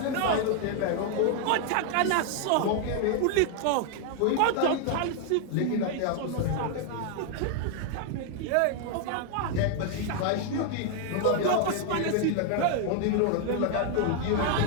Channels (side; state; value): both; different; correlation 0.00